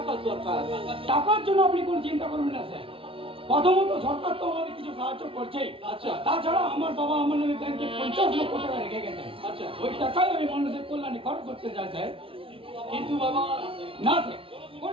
দরকার। টাকার জন্য আপনি কোনো চিন্তা করবেন না স্যার। প্রথমত সরকার তো আমাদের কিছু সাহায্য করছেই। আচ্ছা। তাছাড়া আমার বাবা আমার নামে ব্যাংকে 50 লক্ষ টাকা রেখে গেছেন। আচ্ছা। ওই টাকায় আমি মানুষের কল্যাণে খরচ করতে চাই স্যার। কিন্তু বাবা, না স্যার,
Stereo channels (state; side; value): late; left; 0.26 ms